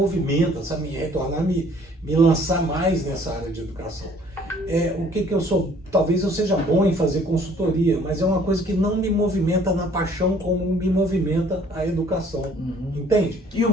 sabe? Retornar, me lançar mais nessa área de educação. O que eu sou, talvez eu seja bom em fazer consultoria, mas é uma coisa que não me movimenta na paixão como me movimenta a educação. Uhum. Entende? E o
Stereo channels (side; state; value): both; normal; correlation 0.57